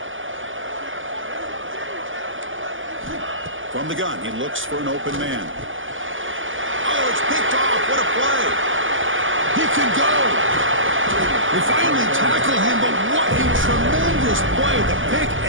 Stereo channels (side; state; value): left; late; 0.57 ms